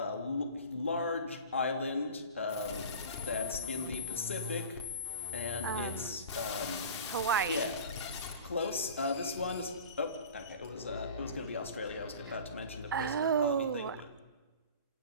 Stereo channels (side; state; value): both; inverted; correlation -0.37